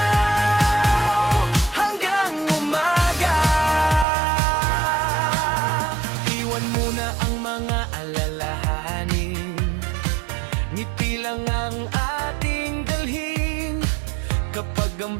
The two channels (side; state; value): left; drops out; at 4.0 s